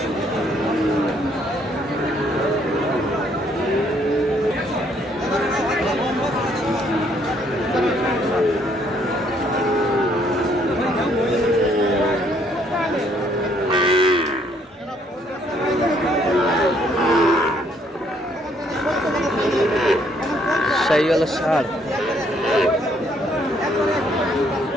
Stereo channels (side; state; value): both; normal; correlation 0.67